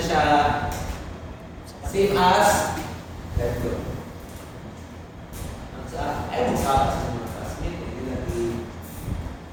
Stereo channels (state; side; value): identical; both; correlation 1.00